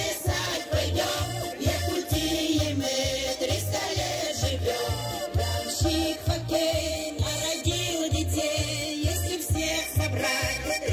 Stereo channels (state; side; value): identical; both; correlation 1.00